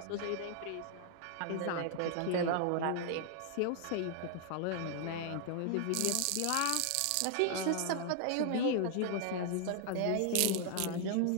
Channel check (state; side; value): different; both; correlation 0.00